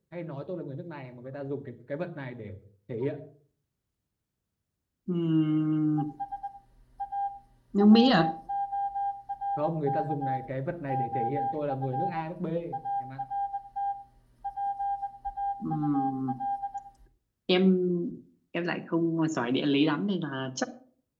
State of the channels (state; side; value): identical; both; correlation 1.00